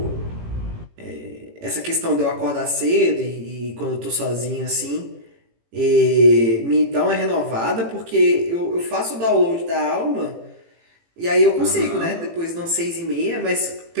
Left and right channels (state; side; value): late; left; 18 ms